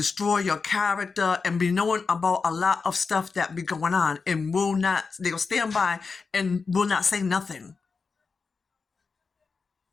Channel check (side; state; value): right; quieter; 4.8 dB